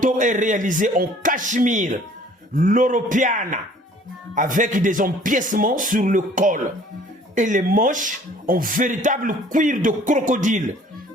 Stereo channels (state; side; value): normal; both; correlation 0.53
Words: est réalisé en cachemire, l'europeana, avec des empiècements sur le col et les manches en véritable cuir de crocodile